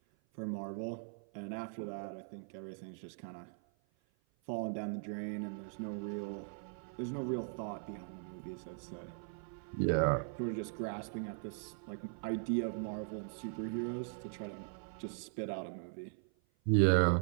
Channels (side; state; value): left; silent; 51 dB below the other